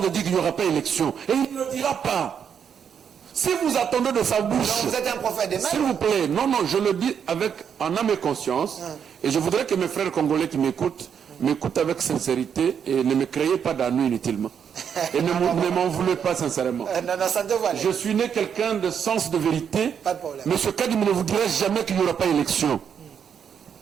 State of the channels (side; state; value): left; quieter; 7.7 dB